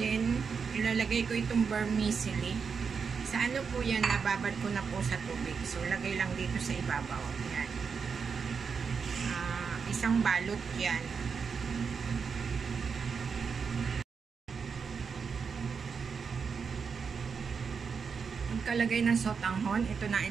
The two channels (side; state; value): left; quieter; 5.8 dB